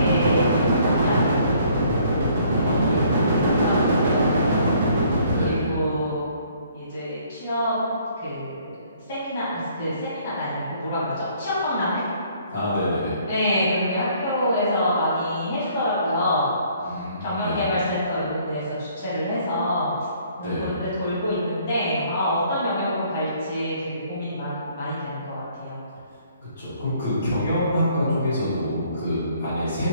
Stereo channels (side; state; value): both; inverted; correlation -0.61